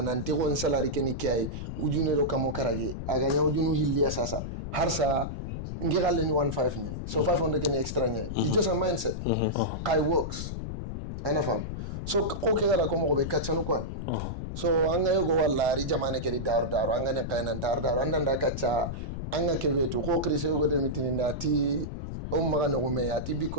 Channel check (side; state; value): left; noise; rumble, 6 dB below the sound